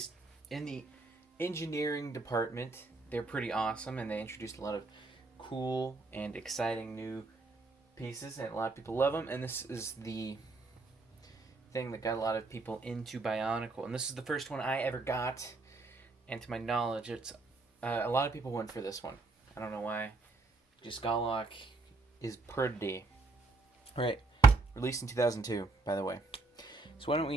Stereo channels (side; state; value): left; quieter; 3.5 dB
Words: in the engineering department, they're pretty awesome, and they introduced a lot of cool and exciting new pieces, and a lot of people love them. And this is the thing that got a lot of people into Bionicle, and this is the first one I ever got. And to my knowledge, it's a lot of people went for this one. I don't know why. Just Gahlok is pretty. Alright, released in 2002, by the way. So why don't